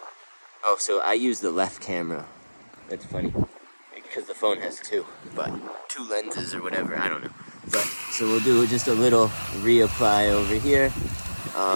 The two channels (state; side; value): inverted; both; correlation -1.00